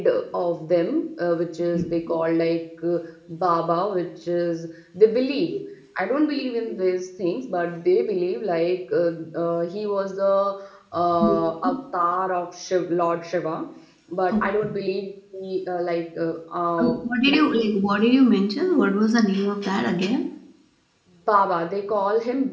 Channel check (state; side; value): identical; both; correlation 1.00